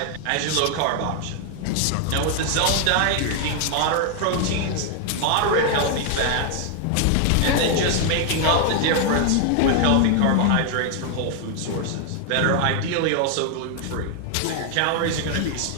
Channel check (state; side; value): different; both; correlation 0.00